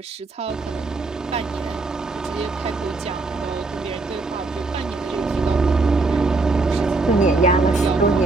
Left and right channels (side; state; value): left; quieter; 3.5 dB